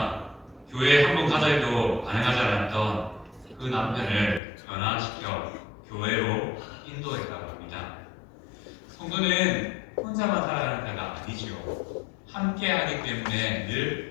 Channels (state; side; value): drops out; right; at 4.4 s